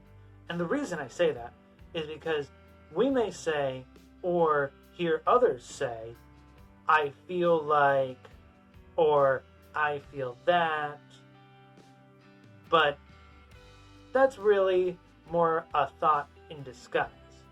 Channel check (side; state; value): both; identical; correlation 1.00